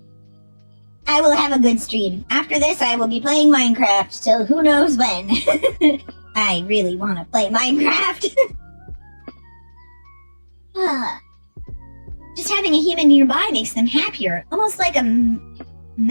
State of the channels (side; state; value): both; inverted; correlation -1.00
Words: I will have a good stream. After this, I will be playing Minecraft till who knows when. I really want to play Minecraft. Just having a human nearby makes them happier, almost like a